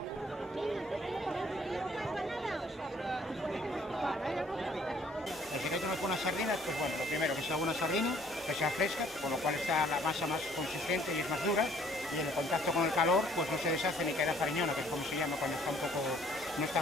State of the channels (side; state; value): both; normal; correlation 0.60